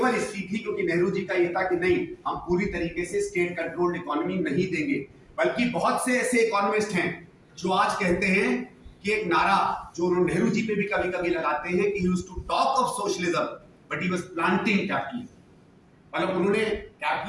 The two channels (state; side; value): identical; both; correlation 1.00